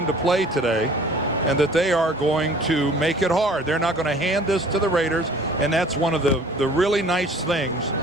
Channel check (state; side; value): normal; both; correlation 0.50